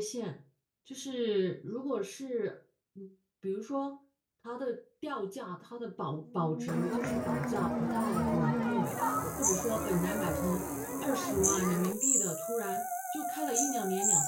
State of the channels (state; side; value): identical; both; correlation 1.00